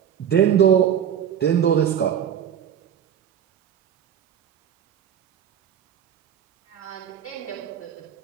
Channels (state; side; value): quieter; left; 9.2 dB